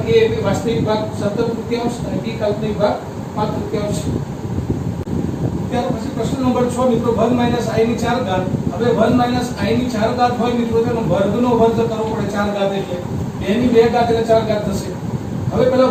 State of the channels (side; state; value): both; identical; correlation 1.00